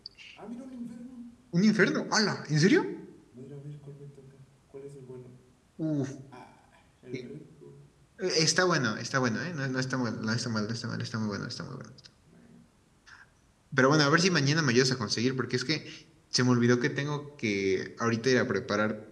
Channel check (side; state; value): both; identical; correlation 1.00